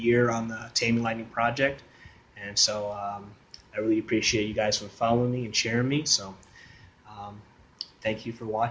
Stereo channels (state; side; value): identical; both; correlation 1.00